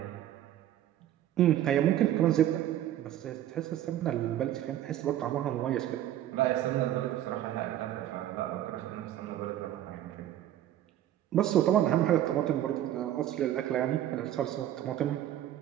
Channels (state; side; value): quieter; left; 12.1 dB